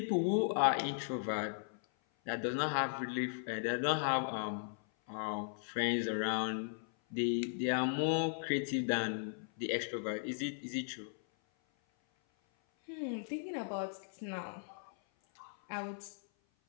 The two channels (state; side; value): silent; right; 53 dB below the other